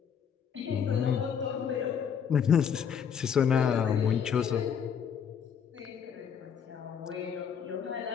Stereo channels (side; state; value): right; quieter; 7.6 dB